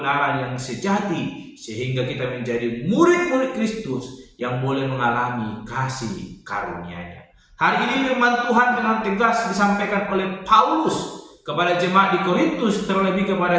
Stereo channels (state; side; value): identical; both; correlation 1.00